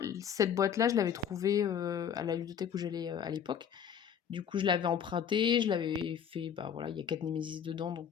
Cette boîte-là, je l'avais trouvée à la ludothèque où j'allais à l'époque. Du coup, je l'avais empruntée, je l'avais fait. Bah voilà, il y a 4 Nemesis dedans, donc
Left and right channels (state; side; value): quieter; right; 8.2 dB